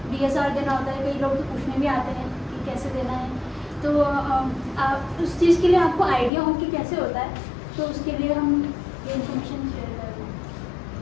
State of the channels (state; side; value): drops out; right; at 6.3 s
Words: DSR देना होता है। कई लोग तो पूछने भी आते हैं कि कैसे देना है, तो आप उस चीज़ के लिए आपको आइडिया हो कि कैसे होता है, तो उसके लिए हम ये इन्फॉर्मेशन शेयर कर रहे हैं।